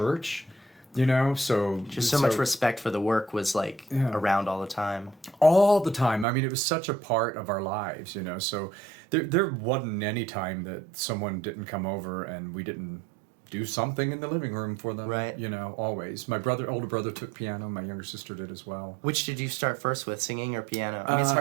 so... Just so much respect for the work was around all the time. All the time. I mean, it was such a part of our lives, so there wasn't any time that someone didn't come over and we didn't do something in the living room for them. Right. Always. My older brother took piano. My younger sister did as well. Which did you start first with, singing or piano? I mean, it's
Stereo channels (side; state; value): left; drops out; at 6.2 s